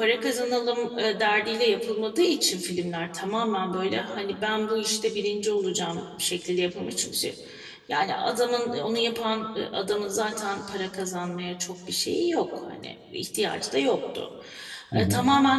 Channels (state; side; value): identical; both; correlation 1.00